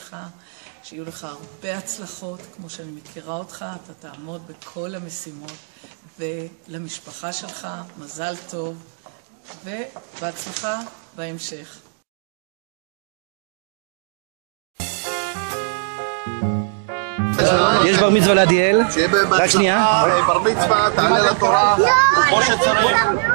שיהיו לך הרבה הצלחות, כמו שאני מכירה אותך, אתה תעמוד בכל המשימות, ולמשפחה שלך מזל טוב, ובהצלחה בהמשך. יש בר מצווה לעדיאל. שיהיה בהצלחה, בר מצווה, תעלה לתורה, כמו שצריך.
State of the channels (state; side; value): silent; left; digital silence